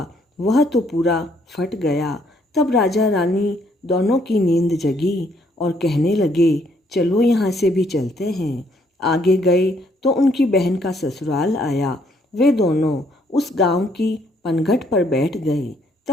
वह तो पूरा फट गया। तब राजा रानी दोनों की नींद जगी और कहने लगे, चलो यहाँ से भी चलते हैं। आगे गए तो उनकी बहन का ससुराल आया। वे दोनों उस गांव की पनघट पर बैठ गए।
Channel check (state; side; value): normal; both; correlation 0.68